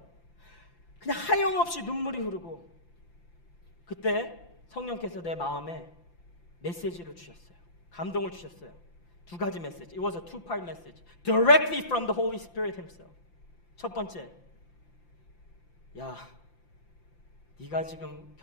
그냥 하염없이 눈물이 흐르고, 그때 성령께서 내 마음에 메시지를 주셨어요. 감동을 주셨어요. 두 가지 메시지. It was a two-part message. Directly from the Holy Spirit himself. 첫 번째, 야, 네가 지금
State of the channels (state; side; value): late; right; 5.8 ms